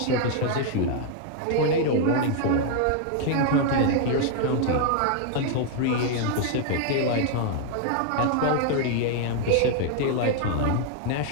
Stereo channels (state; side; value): different; both; correlation 0.00